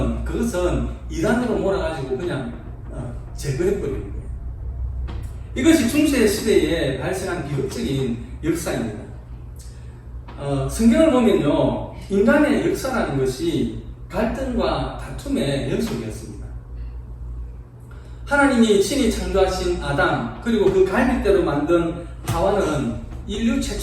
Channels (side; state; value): both; identical; correlation 1.00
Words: 그것은 이단으로 몰아가지고 그냥 제거해버리는 거예요. 이것이 중세 시대에 발생한 비극적인 역사입니다. 성경을 보면요, 인간의 역사라는 것이 갈등과 다툼의 연속이었습니다. 하나님이 친히 창조하신 아담, 그리고 그 갈빗대로 만든 하와는 인류